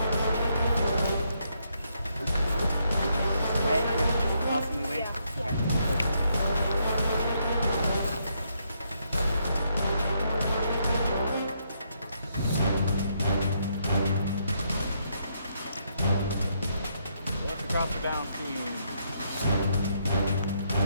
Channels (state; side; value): inverted; both; correlation -0.75